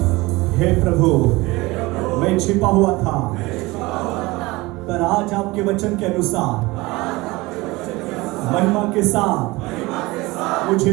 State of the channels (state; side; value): quieter; left; 21.8 dB